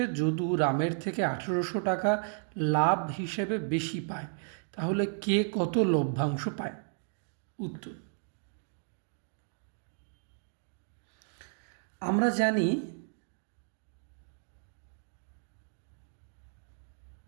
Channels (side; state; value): left; silent; digital silence